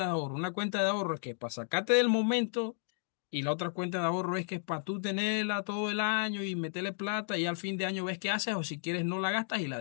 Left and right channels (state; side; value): silent; right; digital silence